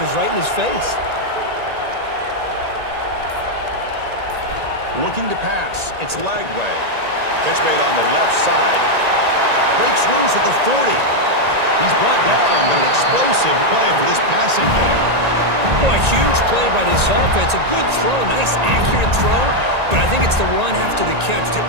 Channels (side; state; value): left; late; 1.9 ms